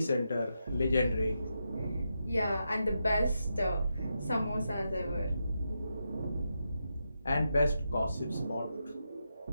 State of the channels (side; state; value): both; inverted; correlation -0.85